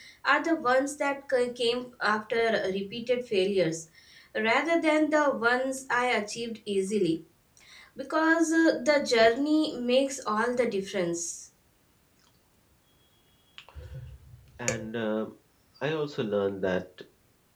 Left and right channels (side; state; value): both; identical; correlation 1.00